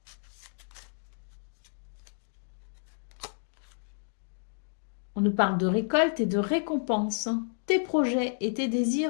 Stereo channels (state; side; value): silent; right; digital silence